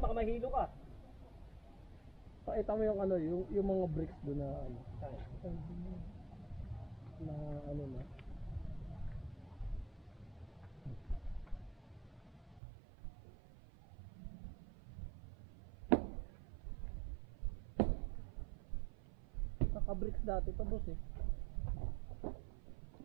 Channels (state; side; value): drops out; left; at 12.6 s